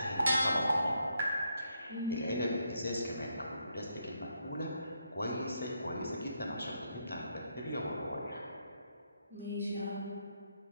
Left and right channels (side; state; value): both; inverted; correlation -0.78